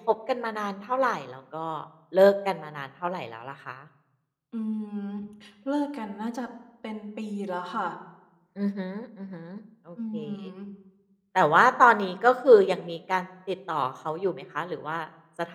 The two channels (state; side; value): identical; both; correlation 1.00